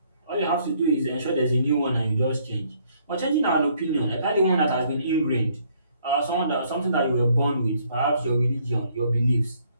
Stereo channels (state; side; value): inverted; both; correlation -0.66